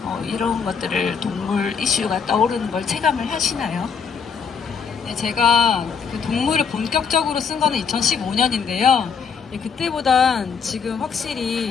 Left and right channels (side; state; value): right; quieter; 6.2 dB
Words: 이런 것들을 동물 이슈가 떠오르는 걸 체감을 하시나요? 네, 제가 그 동물을 본격적으로 쓴 거는 2015년인데요. 그때보단 지금